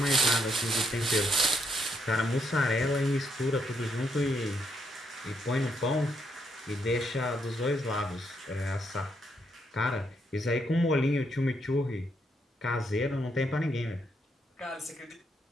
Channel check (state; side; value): normal; both; correlation 0.76